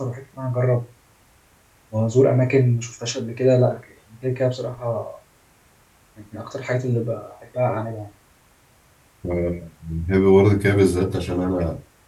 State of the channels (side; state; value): both; identical; correlation 1.00